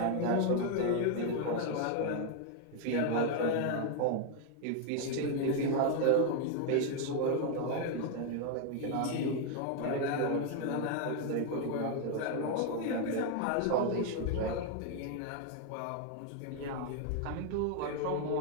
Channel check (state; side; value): different; both; correlation 0.00